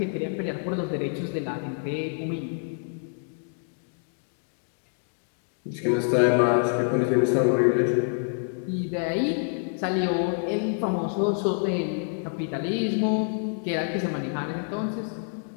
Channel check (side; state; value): right; silent; 60 dB below the other